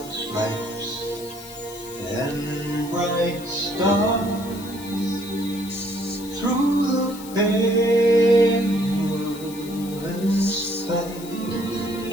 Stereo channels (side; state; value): left; noise; hiss, 16 dB below the sound